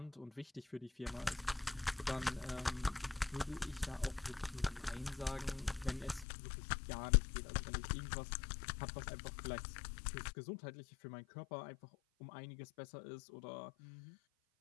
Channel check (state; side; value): drops out; right; at 6.2 s